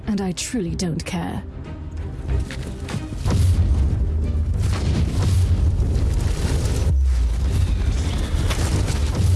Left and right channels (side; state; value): both; identical; correlation 1.00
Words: and I truly don't care.